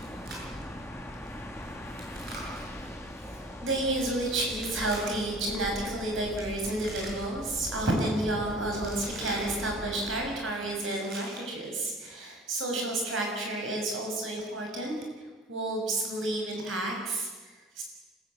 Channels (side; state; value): both; normal; correlation 0.44